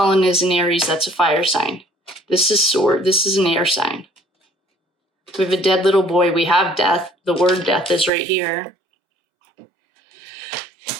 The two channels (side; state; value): left; drops out; at 8.1 s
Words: is an Aries. That's a fire sign. This is sword. This is an air sign. We have a dead little boy. We have death. The word death is right here.